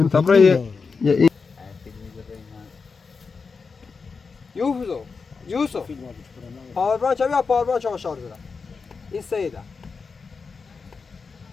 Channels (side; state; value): right; quieter; 4.9 dB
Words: tabraya ya Yusuf Yusuf power branch abi power branch aşağı dura inside